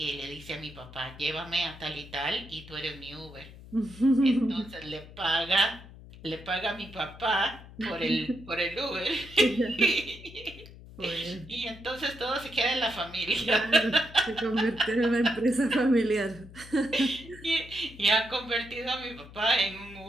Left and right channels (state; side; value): noise; left; hum, 18 dB below the sound